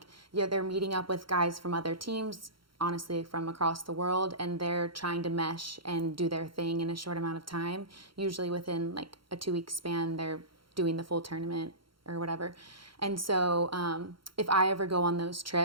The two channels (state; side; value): late; left; 0.73 ms